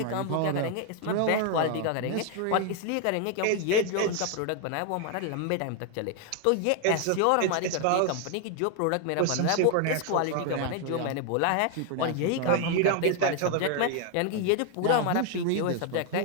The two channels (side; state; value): both; different; correlation 0.01